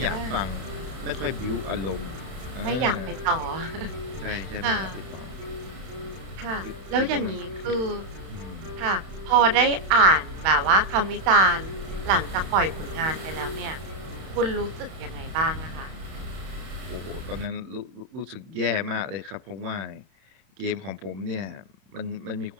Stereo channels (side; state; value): left; late; 31 ms